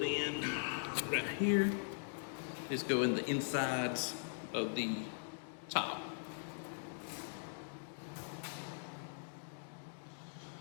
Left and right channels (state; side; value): silent; right; digital silence